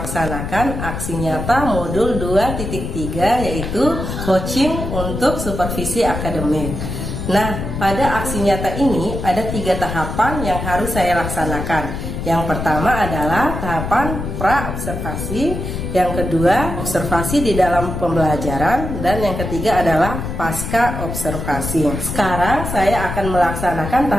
aksi nyata modul 2.3, yaitu coaching untuk supervisi akademik. Nah, pada aksi nyata ini ada 3 tahapan yang harus saya laksanakan. Yang pertama adalah tahapan pra-observasi, yang kedua observasi di dalam pembelajaran, dan yang ketiga adalah pasca observasi. Sekarang saya akan melaksanakan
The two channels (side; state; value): left; noise; rumble, 5 dB below the sound